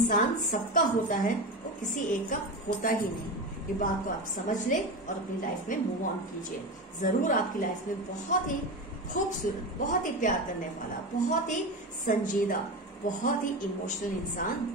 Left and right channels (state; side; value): normal; both; correlation 0.22